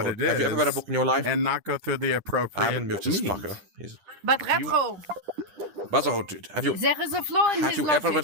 it Have you ever read a is book in your life? and not go through the appropriate I'm gonna mute this means. fucker. But retro, Brotherhood, dude, have you there is a flaw in have his you ever logic.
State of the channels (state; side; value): late; left; 10 ms